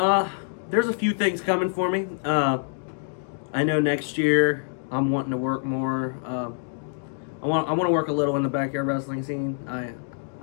There's a few things coming for me. I know next year I'm wanting to work more. I want to work a little in the backyard wrestling scene.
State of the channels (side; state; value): right; silent; digital silence